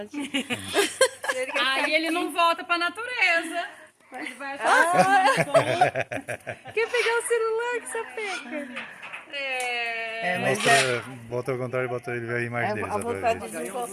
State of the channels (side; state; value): both; identical; correlation 1.00